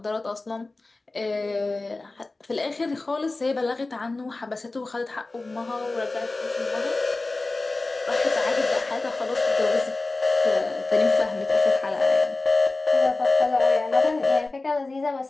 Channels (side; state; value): right; quieter; 3.2 dB